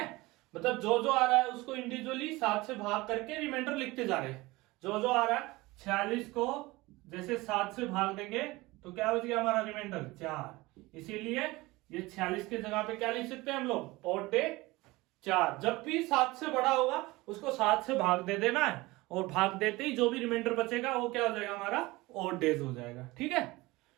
मतलब जो जो आ रहा है उसको इंडिविजुअली 7 से भाग करके रिमाइंडर लिखते जा रहे हैं। जो जो आ रहा है 46 को जैसे 7 से भाग देंगे तो क्या बच गया हमारा रिमाइंडर 4, इसीलिए ये 46 के जगह पे क्या लिख सकते हैं हम लोग ऑड डे 4। जब भी 7 से बड़ा होगा उसको 7 से भाग दे देना है, और भाग देते ही जो भी रिमाइंडर बचेगा वो क्या हो जाएगा हमारा ऑड डेज हो जाएगा। ठीक है,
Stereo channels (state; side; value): quieter; left; 21.1 dB